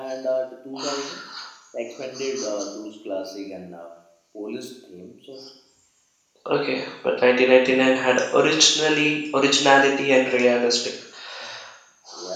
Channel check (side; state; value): both; identical; correlation 1.00